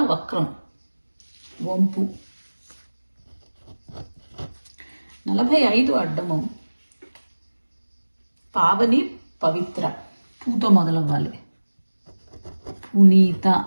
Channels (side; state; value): both; inverted; correlation -1.00